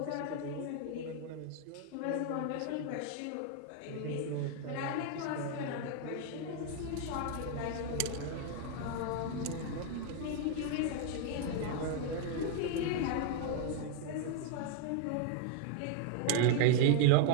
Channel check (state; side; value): different; both; correlation 0.00